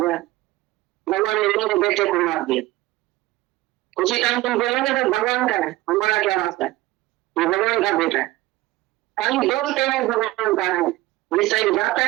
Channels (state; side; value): quieter; left; 18.1 dB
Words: भगवान ने मेरे बेटे को मार दिया उसी टाइम तुम बोलोगे तो भगवान का है हमारा क्या रास्ता है ये भगवान का बेटा है कहीं बोलते हैं भगवान का है विषय जाता